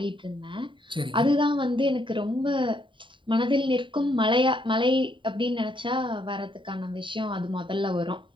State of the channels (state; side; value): late; left; 0.24 ms